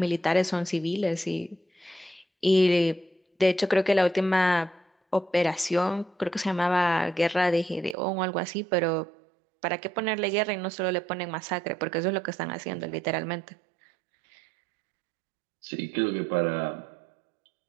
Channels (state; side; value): drops out; left; at 8.0 s